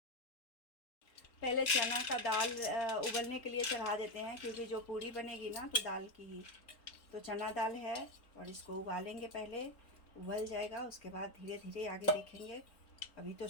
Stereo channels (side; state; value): right; late; 4.1 ms